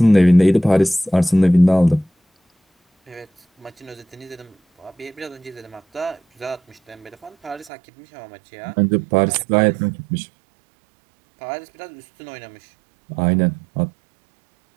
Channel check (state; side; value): drops out; left; at 7.7 s